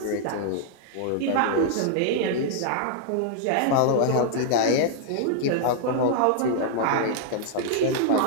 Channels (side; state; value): both; different; correlation -0.01